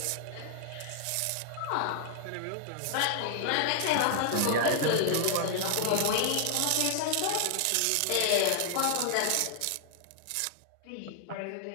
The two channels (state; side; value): different; both; correlation -0.01